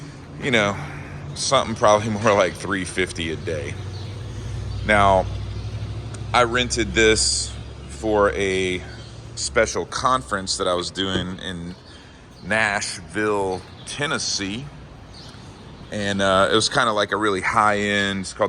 You know, something probably more like $350 a day. Now, I rented this for a special conference that I was doing in Nashville, Tennessee. And it was kind of like a really high-end, it's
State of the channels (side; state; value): both; identical; correlation 1.00